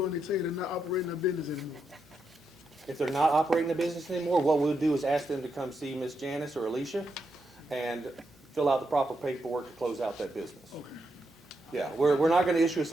they tell you they're not operating their business anymore. If they're not operating the business anymore, what we'll do is ask them to come see Miss Janice or Alicia and fill out the proper paperwork to close out that business. Okay. Yeah, we're not going to issue a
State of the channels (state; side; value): normal; both; correlation 0.83